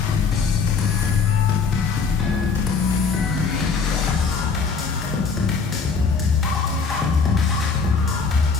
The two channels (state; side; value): quieter; right; 5.2 dB